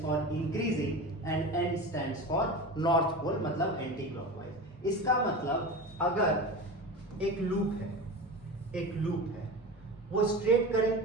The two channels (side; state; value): both; normal; correlation 0.28